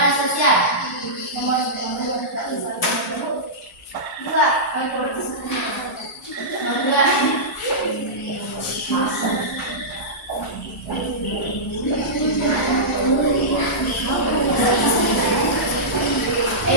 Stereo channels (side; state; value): both; normal; correlation -0.15